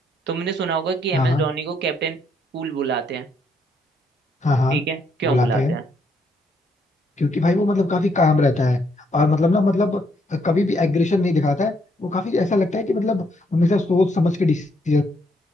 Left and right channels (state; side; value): normal; both; correlation 0.73